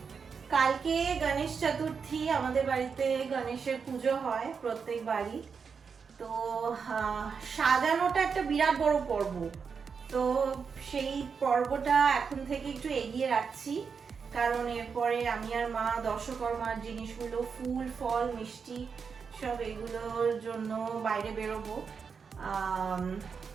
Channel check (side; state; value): left; quieter; 5.9 dB